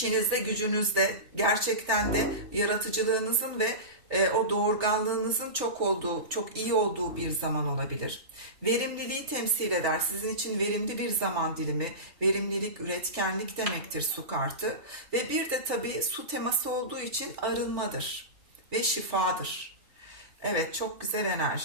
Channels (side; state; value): left; late; 3.4 ms